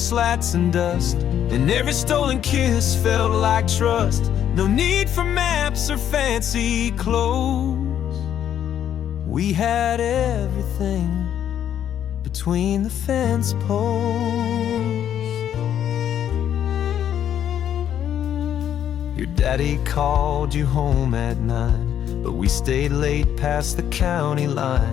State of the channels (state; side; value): quieter; right; 10.0 dB